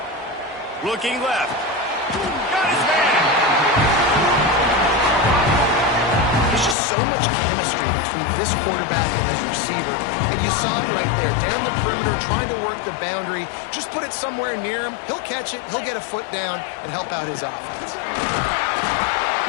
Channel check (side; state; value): right; drops out; at 6.8 s